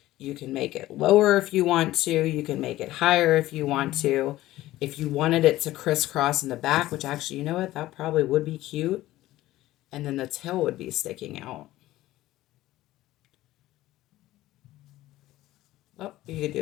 You can make it lower if you want to. You can make it higher if you want to. If you wanted it to crisscross in the back, which actually, you know what, that probably would be cute. And then the tail would be sticking out. Oh, you could do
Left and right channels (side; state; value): right; quieter; 16.0 dB